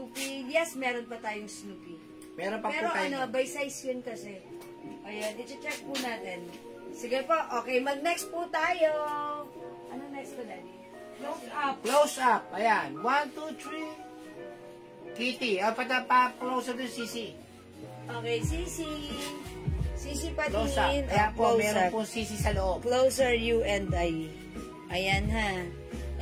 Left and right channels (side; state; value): both; identical; correlation 1.00